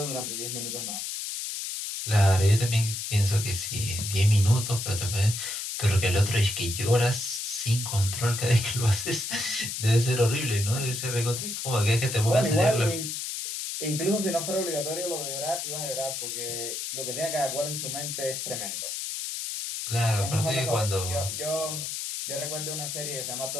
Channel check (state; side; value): noise; left; hiss, 4 dB below the sound